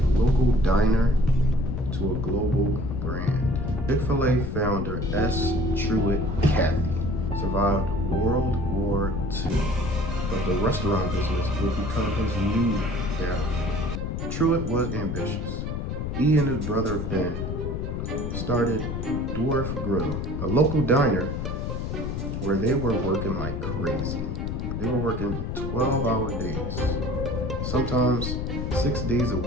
local diner to a global brand. Chick-fil-A founder S. Truett Cathy survived World War II, but the restaurant business would become his new downfall. Truett was ambitious. He and his brother Ben started Dwarf Grill, a local diner where they were working like crazy. They were working 12-hour days, sometimes 6 days a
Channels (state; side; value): noise; left; rumble, 3 dB below the sound